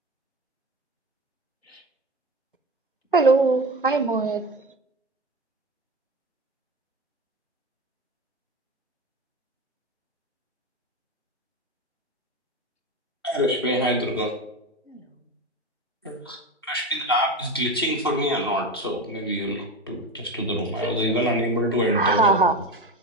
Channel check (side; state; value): both; normal; correlation 0.22